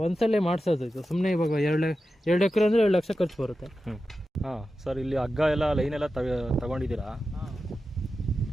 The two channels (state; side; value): normal; both; correlation 0.92